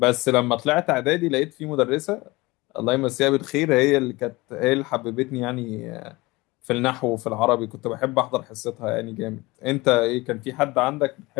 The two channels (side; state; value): right; quieter; 22.1 dB